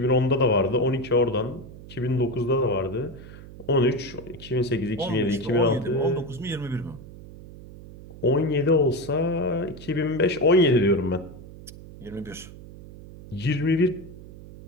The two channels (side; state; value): right; noise; hum, 16 dB below the sound